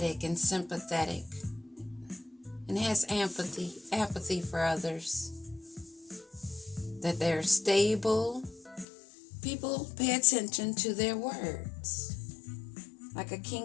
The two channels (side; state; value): right; drops out; at 8.8 s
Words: and sympathetic, and has apathy for others, that they're stable. People pay attention to their words, like a